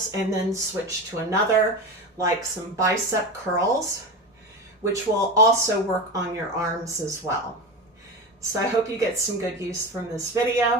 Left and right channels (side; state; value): both; normal; correlation 0.24